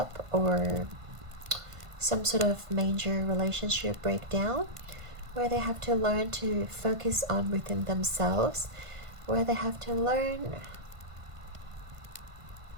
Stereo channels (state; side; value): late; left; 1.5 ms